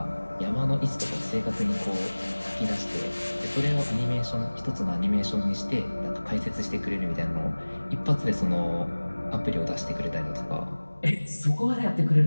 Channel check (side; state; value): both; inverted; correlation -1.00